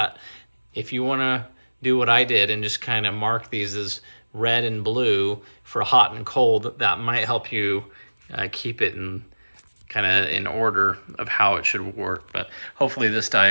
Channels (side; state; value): both; inverted; correlation -1.00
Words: If you want to do what I did and just kind of mark these as red and blue for hot and cold, that might help you keep it in kind of in order of how it should work. But hopefully this